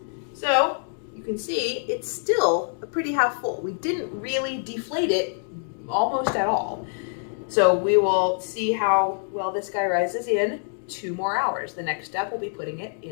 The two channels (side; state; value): right; silent; digital silence